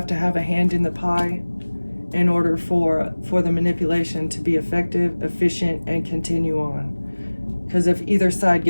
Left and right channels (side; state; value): both; inverted; correlation -1.00